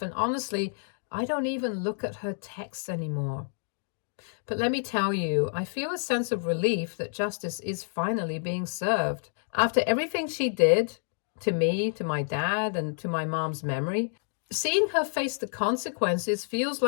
and honestly, I don't even look at her texts anymore. But let me tell you, I feel a sense of relief that justice is finally being served. After everything she did to me, to my dad, and to my mom's memory, seeing her face the consequences feels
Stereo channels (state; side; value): silent; right; digital silence